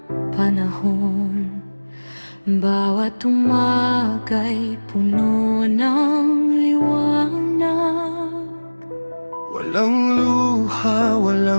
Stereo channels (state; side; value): inverted; both; correlation -1.00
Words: panahon. Bawat umaga'y puno ng liwanag. Walang luha,